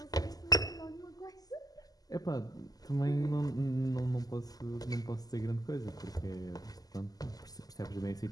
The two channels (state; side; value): late; right; 0.18 ms